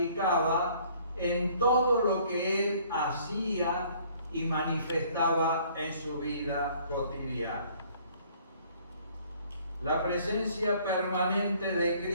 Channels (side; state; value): both; inverted; correlation -0.58